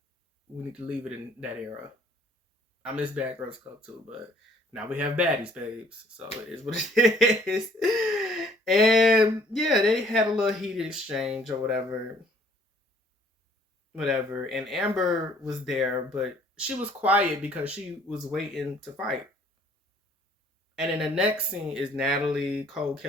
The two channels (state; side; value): normal; both; correlation 0.59